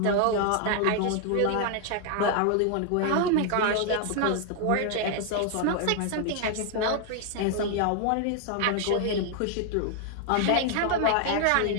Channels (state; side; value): different; both; correlation 0.00